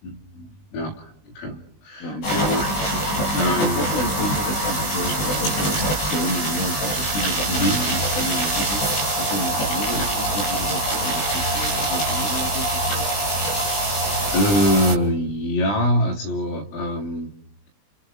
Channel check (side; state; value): right; late; 20 ms